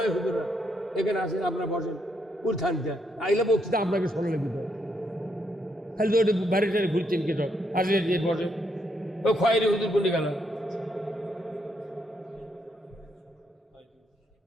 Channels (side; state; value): both; normal; correlation 0.76